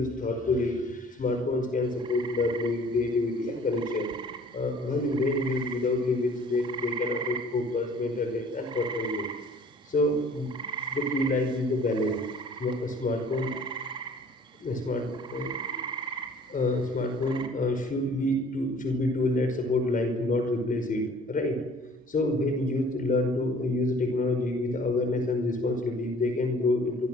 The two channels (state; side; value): normal; both; correlation 0.52